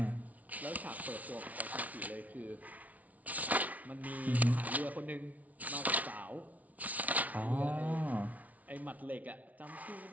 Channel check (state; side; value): late; left; 0.071 ms